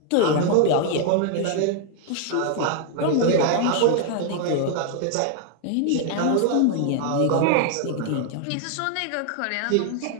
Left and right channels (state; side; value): different; both; correlation 0.00